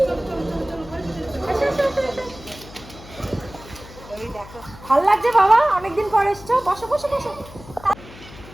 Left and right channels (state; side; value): noise; left; hum, 18 dB below the sound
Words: ভাল লাগছে বাবা, অনেকদিন পর এসছো, বসো বসো বসো।